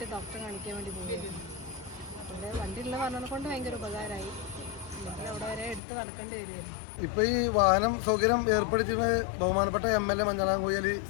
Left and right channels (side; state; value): right; drops out; at 5.8 s